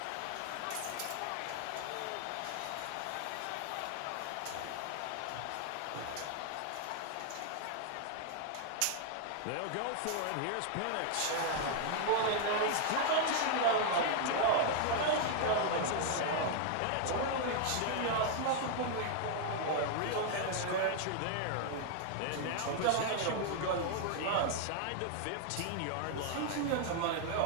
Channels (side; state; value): both; different; correlation 0.00